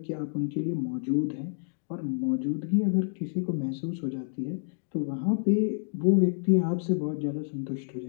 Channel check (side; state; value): right; silent; digital silence